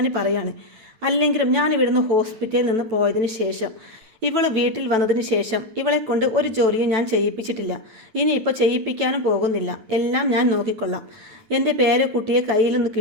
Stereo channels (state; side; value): late; left; 9.1 ms